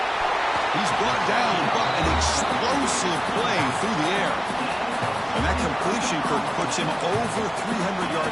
He's brought down, but an explosive play through the air. And that completion, Kirk, puts him over 300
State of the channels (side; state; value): right; noise; hum, 30 dB below the sound